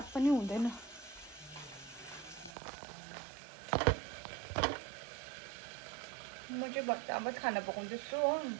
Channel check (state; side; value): drops out; left; at 2.5 s